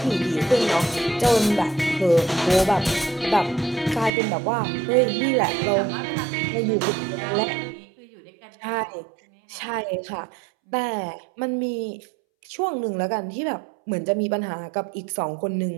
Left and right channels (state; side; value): drops out; left; at 4.1 s